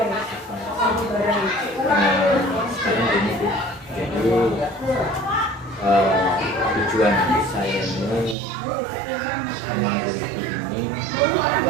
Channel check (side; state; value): left; drops out; at 8.3 s